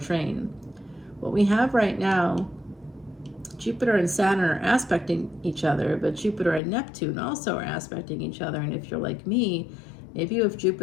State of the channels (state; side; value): drops out; right; at 6.6 s